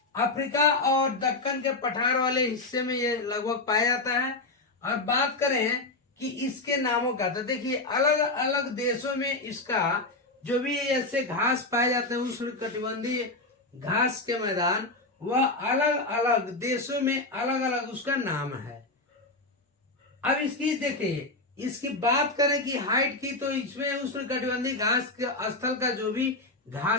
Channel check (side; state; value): right; quieter; 3.0 dB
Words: अफ्रीका और दक्कन के पठार वाले हिस्से में ये लगभग पाया जाता है। और बात करें कि इसके नामों का, तो देखिए अलग अलग देशों में इसका जो भी ऐसे घास पाए जाते हैं उष्णकटिबंधीय घास के मैदान, वह अलग अलग देशों में अलग अलग उसका नाम है। अब इसकी देखिए, इसकी बात करें कि हाइट की, तो इसमें उष्णकटिबंधीय घास के स्थल का जो भी